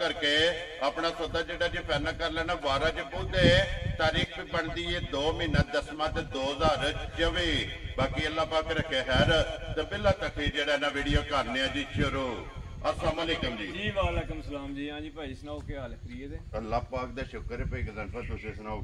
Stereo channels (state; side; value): identical; both; correlation 1.00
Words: करके अपना सौदा जड़ा जी फाइनल कर लेना। 12 च पहुंचे तारीख भी बनती है 2 महीना 10वां 2024। बाकी अल्लाह पाक रखे खैर तो पहला तक जड़ा ना वीडियो करने जी शुरू। अस्सलाम वालेकुम जी। वालेकुम सलाम जी। हाँ जी भाई सुनाओ क्या हाल है? फ्री है? अल्लाह पाक दा शुक्र है भाई गजनफर तुसी सुनाओ